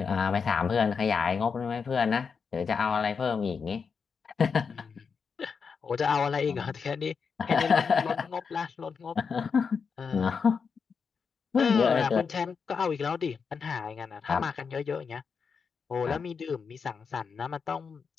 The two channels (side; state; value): right; quieter; 5.8 dB